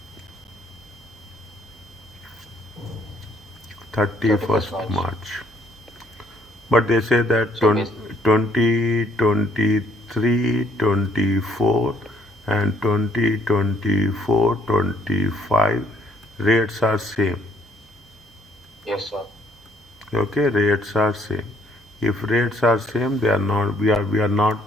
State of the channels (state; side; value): normal; both; correlation 0.66